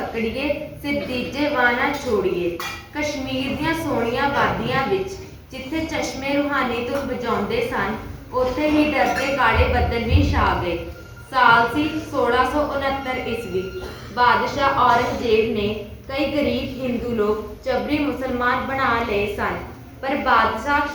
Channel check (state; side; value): identical; both; correlation 1.00